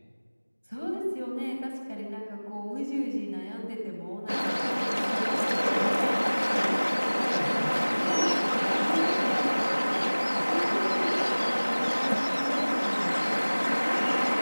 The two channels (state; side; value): inverted; both; correlation -1.00